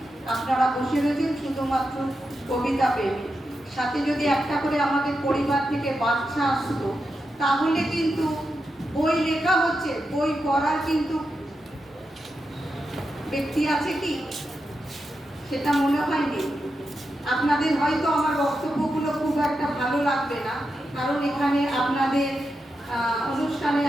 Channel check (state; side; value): normal; both; correlation 0.88